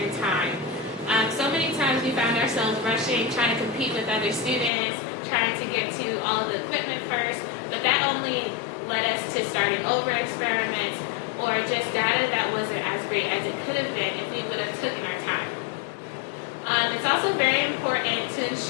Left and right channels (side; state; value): right; drops out; at 4.7 s